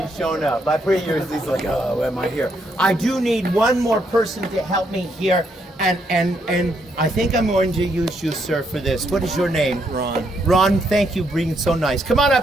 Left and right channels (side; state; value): both; normal; correlation 0.75